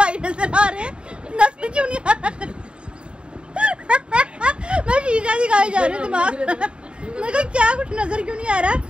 नजर आ रहे हैं, नजर क्यों नहीं आ रहा। मैं शीशा दिखाई जा रही हूँ दिमाग। मैं कहा क्या कुछ नजर क्यों नहीं आ रहा।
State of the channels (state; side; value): late; left; 0.053 ms